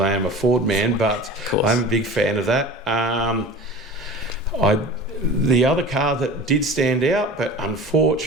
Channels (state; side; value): normal; both; correlation 0.37